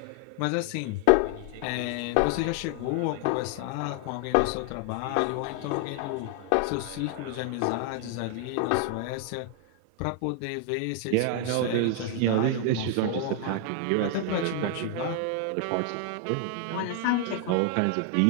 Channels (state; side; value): different; both; correlation 0.00